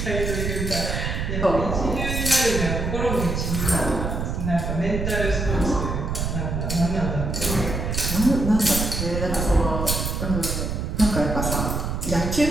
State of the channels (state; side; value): noise; right; rumble, 2 dB below the sound